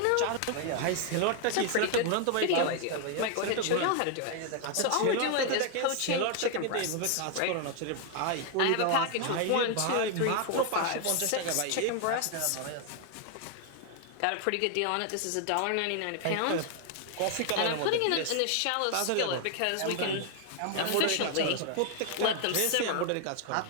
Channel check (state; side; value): different; both; correlation 0.00